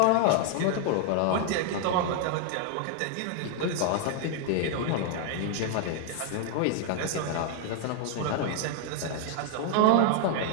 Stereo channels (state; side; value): different; both; correlation 0.00